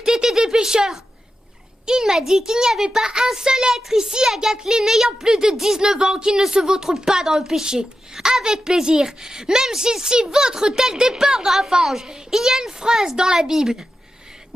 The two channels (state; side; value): normal; both; correlation 0.90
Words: étaient des pécheurs. Il m'a dit qu'il n'y avait pas un seul être ici à Gatlin ayant plus de 19 ans qui ne se vautre pas dans le péché. Avec plaisir, même s'il s'y vautre tel des porcs dans la fange. Il y a une phrase dans la Bible.